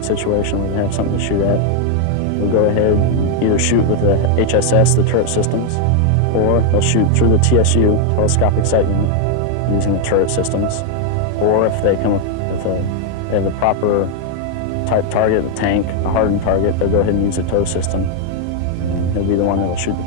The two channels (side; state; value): both; different; correlation 0.00